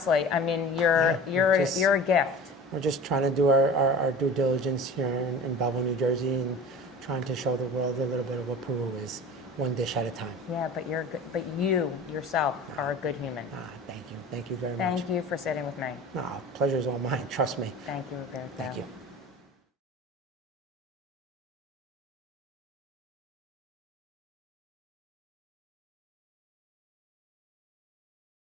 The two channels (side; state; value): both; normal; correlation 0.37